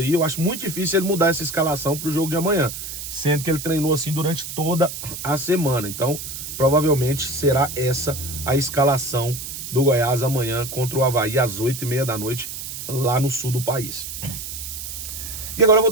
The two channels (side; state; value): right; noise; hiss, 8 dB below the sound